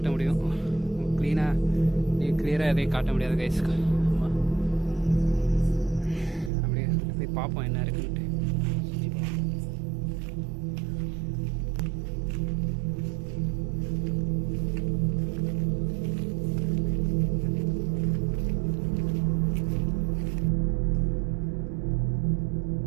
முடியும். கிளியராக எதையும் காட்ட முடியாது கைஸ். ஆமாம், அப்படியே போய் பார்ப்போம் என்ன இருக்குன்ட்டு.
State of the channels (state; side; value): drops out; left; at 6.5 s